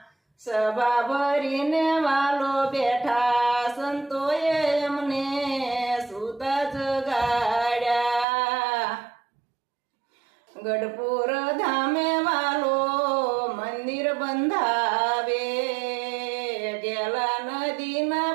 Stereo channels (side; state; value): left; drops out; at 8.2 s